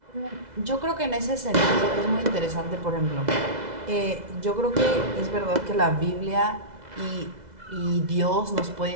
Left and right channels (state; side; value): late; left; 2.0 ms